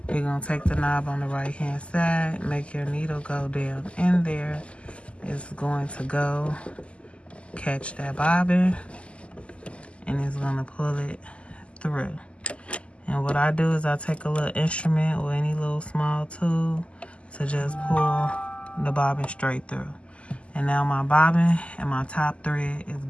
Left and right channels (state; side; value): late; right; 0.056 ms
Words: you're gonna take the knob on the right hand side, make your needle go down in there. It's going to go catch that bobbin, and it's gonna pull it through. And what I do is I take a little instrument or any little small tool to just pull the bobbin straight through. And now my bobbin and my top thread is